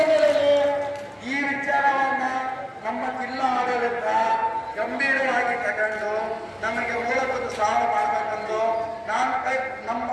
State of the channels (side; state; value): both; identical; correlation 1.00